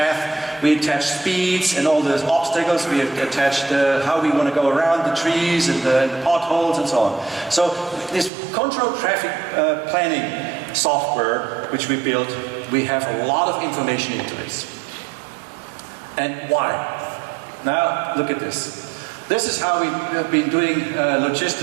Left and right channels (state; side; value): drops out; left; at 8.3 s